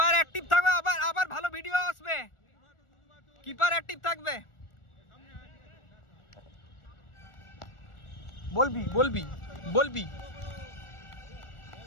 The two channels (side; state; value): right; late; 1.4 ms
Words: অ্যাক্টিভ থাকবে, আবার ভালো ভিডিও আসবে। কিপার অ্যাক্টিভ থাকবে। বলবি